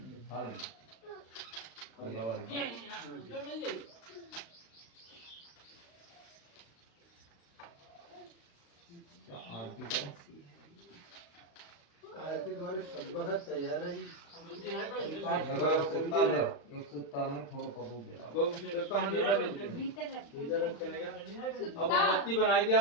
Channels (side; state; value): right; late; 35 ms